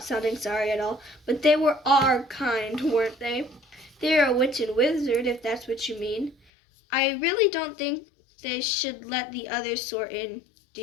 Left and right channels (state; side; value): drops out; right; at 6.4 s